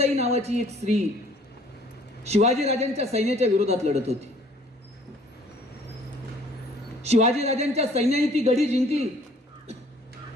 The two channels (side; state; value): both; normal; correlation 0.57